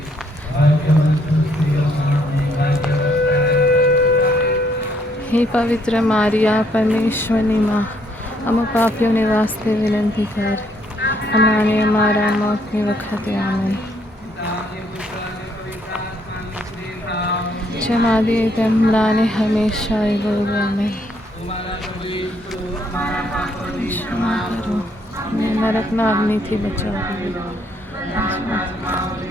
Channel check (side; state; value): both; normal; correlation 0.69